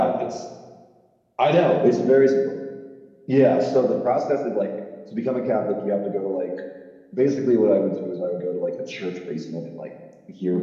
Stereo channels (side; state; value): both; identical; correlation 1.00